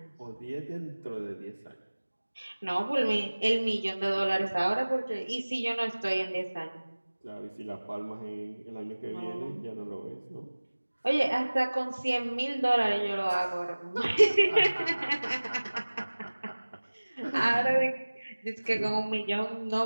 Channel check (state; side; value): inverted; both; correlation -1.00